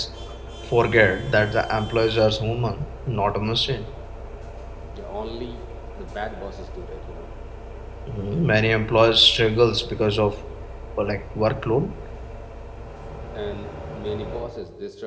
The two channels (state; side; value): identical; both; correlation 1.00